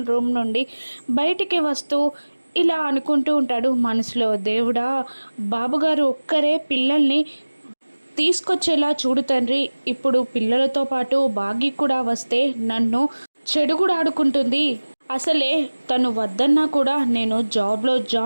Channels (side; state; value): both; inverted; correlation -1.00